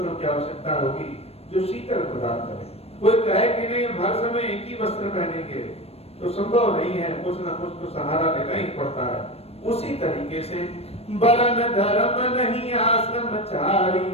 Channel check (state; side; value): late; right; 0.29 ms